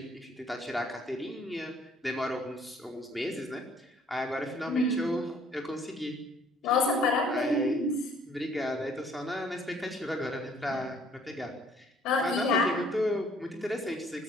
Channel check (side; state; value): both; normal; correlation 0.59